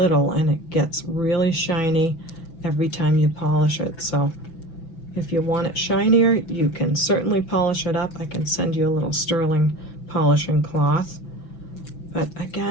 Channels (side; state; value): right; late; 6.0 ms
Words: and it gets really shiny every time you polish it. So if you want it shinier, you can certainly polish it up. I can send you a little sterling polishing cloth. But